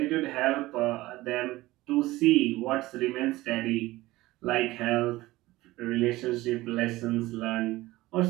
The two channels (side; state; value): left; quieter; 18.4 dB